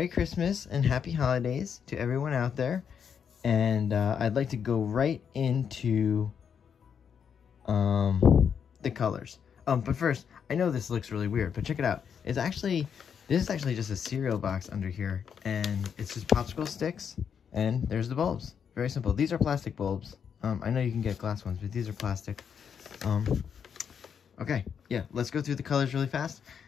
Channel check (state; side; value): quieter; right; 7.4 dB